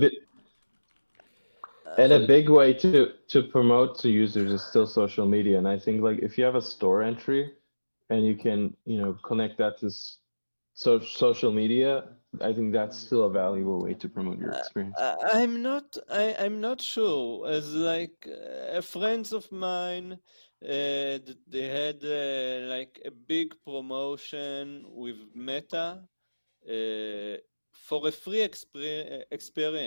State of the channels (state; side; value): inverted; both; correlation -1.00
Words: and a so big way to promote to users is still social media. And I think like if you have a store entry and you can connect that to social media, I think that's still a valuable way to promote your experience. I'm not sure. As like friends of mine, they had like a big promotion with Meta for a free